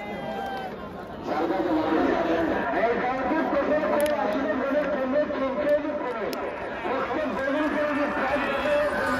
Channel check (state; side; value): identical; both; correlation 1.00